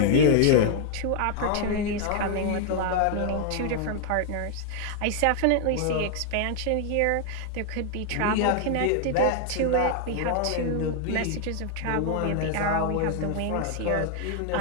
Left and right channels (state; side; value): different; both; correlation 0.00